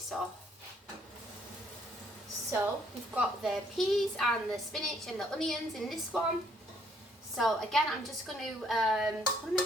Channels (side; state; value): both; normal; correlation 0.67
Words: off. So we've got the peas and the spinach and the onions in this one. So again, I'm just going to, what am I